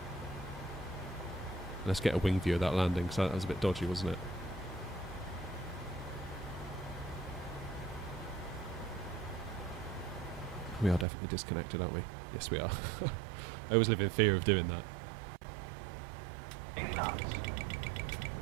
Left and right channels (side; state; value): left; drops out; at 11.1 s